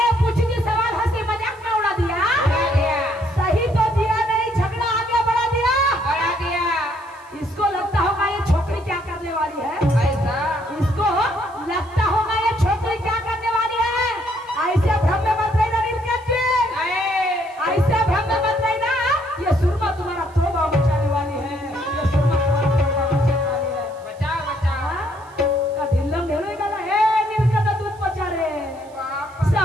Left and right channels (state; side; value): noise; right; hiss, 29 dB below the sound